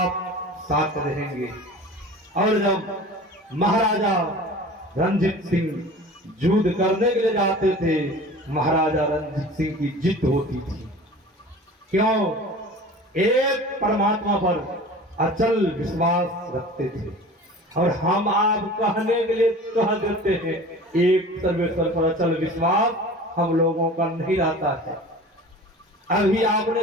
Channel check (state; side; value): normal; both; correlation 0.40